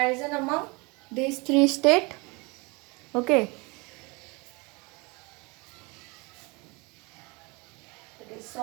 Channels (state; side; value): quieter; left; 27.5 dB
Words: among these three states. Okay, it is